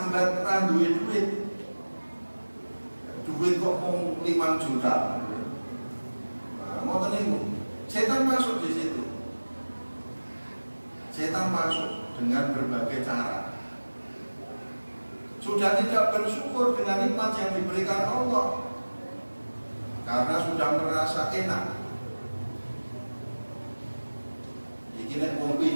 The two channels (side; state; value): both; inverted; correlation -1.00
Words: ra duwe duit. Duit kok mau 5 juta. Nah, ngoten niku. Setan masuk di situ. Setan masuk dengan berbagai cara. Sudah tidak bersyukur dengan nikmat yang diberikan Allah. Karena sudah merasa enak. Iki nek wong